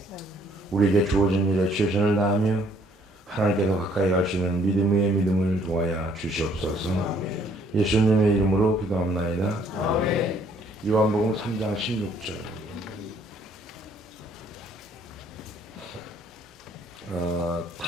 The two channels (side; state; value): both; normal; correlation 0.64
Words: 우리에게 주어진 일에 최선을 다하며 하나님께서 가까이 갈 수 있는 믿음의 믿음을 도와야 주시옵소서. 예수님의 이름으로 기도합나이다. 요한복음 3장 16절.